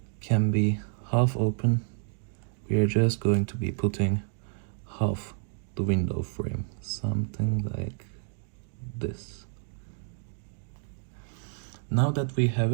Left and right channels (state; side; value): silent; left; 56 dB below the other